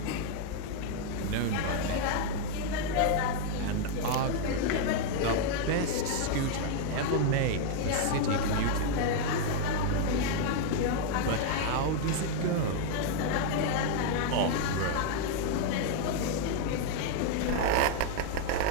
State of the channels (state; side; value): different; both; correlation 0.00